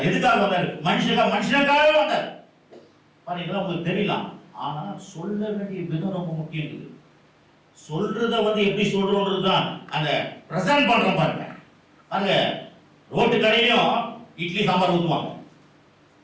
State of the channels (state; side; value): identical; both; correlation 1.00